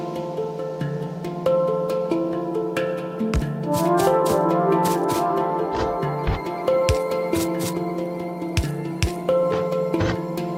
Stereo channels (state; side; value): identical; both; correlation 1.00